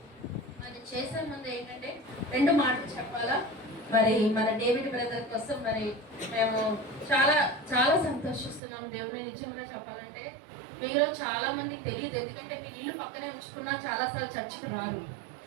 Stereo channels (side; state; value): left; drops out; at 8.6 s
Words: అది చేసే ముందు ఏంటంటే 2 మాటలు చెప్పాలా. మరి మన డేవిడ్ బ్రదర్ కోసం మరి మేము చాలా చాలా సంతోషిస్తున్నాం. దేవుని నిజంగా చెప్పాలంటే మీలో చాలా మందికి తెలియదు, ఎందుకంటే మీరు ఇల్లు పక్కనే ఉంచుకున్నా చాలాసార్లు చర్చికి రారు.